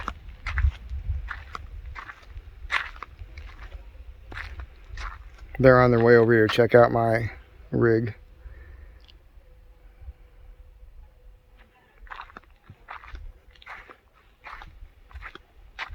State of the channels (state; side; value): identical; both; correlation 1.00